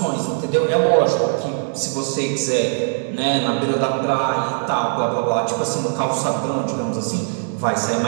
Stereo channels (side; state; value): left; silent; digital silence